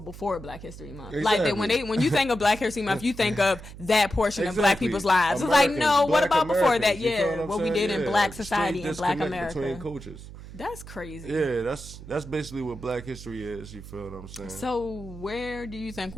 before Black History Month. Exactly. Like when you think of Black History Month, you think of that portion of Black people's lives. Americans, it's like, no, what about before that? Yeah, what we did in Black society and Black America. Between cultures. That's crazy. Yeah, that's basically what Black history is. You feel what I'm saying? So where do you think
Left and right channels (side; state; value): right; noise; hum, 14 dB below the sound